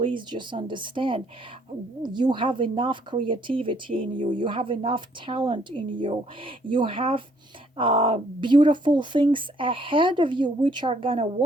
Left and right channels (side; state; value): both; normal; correlation 0.65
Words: just understand, you have enough creativity in you. You have enough talent in you. You have beautiful things ahead of you which are gonna